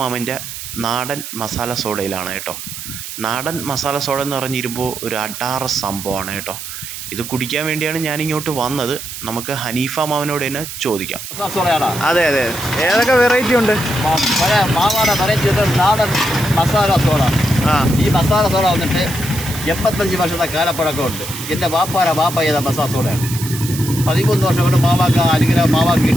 നാടൻ മസാല സോഡയിലാണ് കേട്ടോ. നാടൻ മസാല സോഡ എന്ന് പറഞ്ഞിരുമ്പോൾ ഒരു അടാറ് സംഭവമാണ് കേട്ടോ. ഇത് കുടിക്കാൻ വേണ്ടിയാണ് ഞാനിങ്ങോട്ട് വന്നത്. നമുക്ക് ഹനീഫ മാമനോട് തന്നെ ചോദിക്കാം. അതെ അതെ, ഏതൊക്കെ വെറൈറ്റി ഉണ്ട്? മാവാടെ വെറൈറ്റി നാടൻ മസാല സോഡ. ഈ മസാല സോഡ വന്നിട്ട് 85 വർഷത്തെ കാലപ്പഴക്കമുണ്ട്. എൻ്റെ വാപ്പ ചെയ്ത മസാല സോഡയാണ്. 13 വർഷം കൊണ്ട് മാവാക്ക് അനുഗ്രഹം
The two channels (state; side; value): noise; right; hiss, 9 dB below the sound